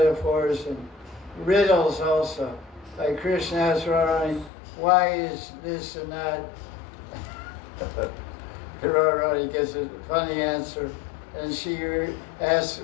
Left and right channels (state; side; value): drops out; right; at 4.5 s